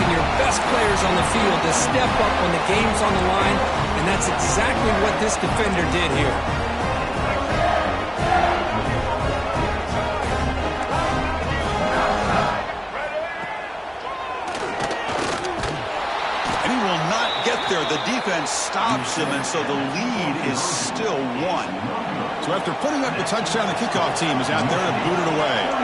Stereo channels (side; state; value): both; identical; correlation 1.00